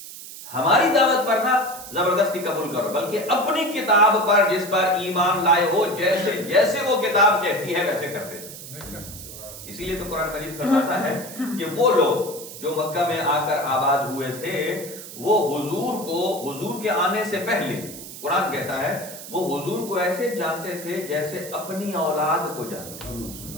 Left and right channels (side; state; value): right; noise; hiss, 13 dB below the sound